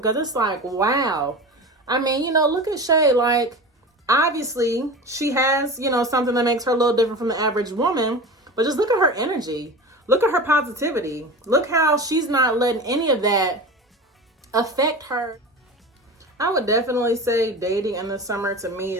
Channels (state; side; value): normal; both; correlation 0.31